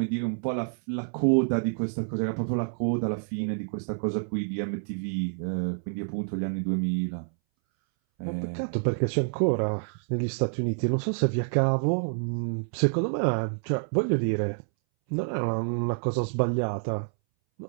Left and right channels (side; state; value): left; silent; 59 dB below the other